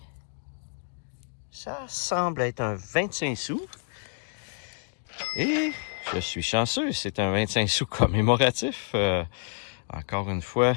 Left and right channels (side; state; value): right; silent; 59 dB below the other